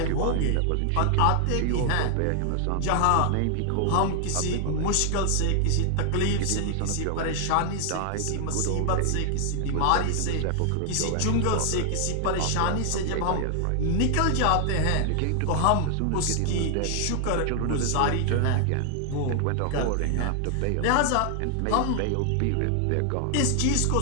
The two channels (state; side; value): different; both; correlation 0.00